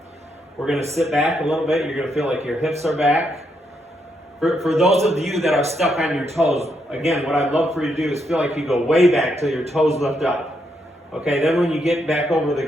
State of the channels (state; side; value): normal; both; correlation 0.79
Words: we're going to sit back a little bit. You're going to feel like your hips are back. For those of you that are stuck on your toes, again, what I'd love for you to do is feel like you go way back till your toes lift up. Okay, then when you get back over the